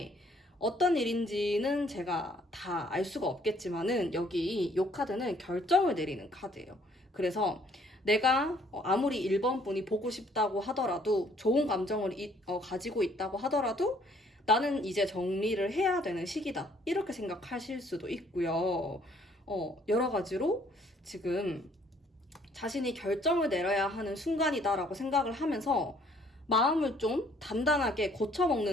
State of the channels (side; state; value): both; normal; correlation 0.62